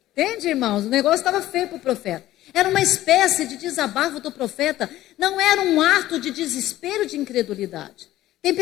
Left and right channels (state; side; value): quieter; right; 14.8 dB